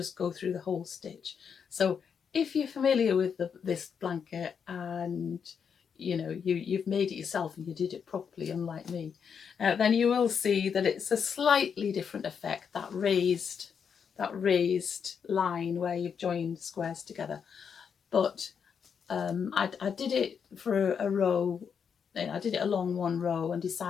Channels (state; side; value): quieter; right; 6.9 dB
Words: go through the whole stitch. So if you're familiar with this blanket and you've made it yourself and you did it properly, unlike me, then you will see that it's a slightly different effect, that raised line where you've joined squares together. But I did it for a row. I did it along one row and